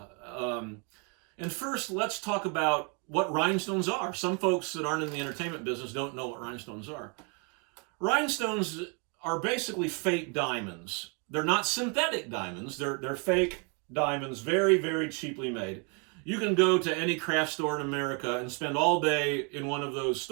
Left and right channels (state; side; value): quieter; left; 35.5 dB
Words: And first, let's talk about what rhinestones are. Some folks that aren't in the entertainment business don't know what rhinestones are. Rhinestones are basically fake diamonds. They're not synthetic diamonds. They're fake diamonds, very, very cheaply made. You can go to any craft store in America and spend all day in one of those